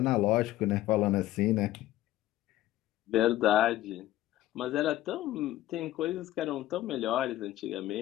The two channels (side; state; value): right; quieter; 14.8 dB